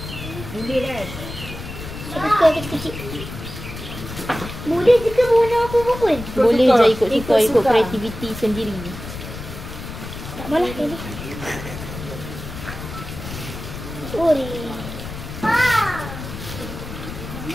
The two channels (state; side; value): noise; left; rumble, 10 dB below the sound